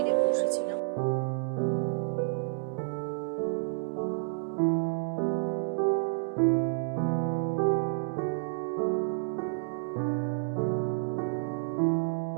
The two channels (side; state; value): left; silent; digital silence